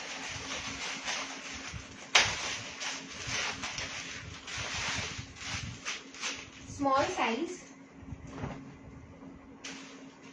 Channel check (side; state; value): both; identical; correlation 1.00